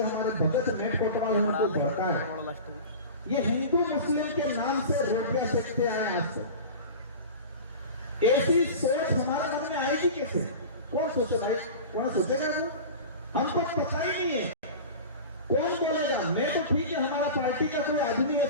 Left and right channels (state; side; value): inverted; both; correlation -0.33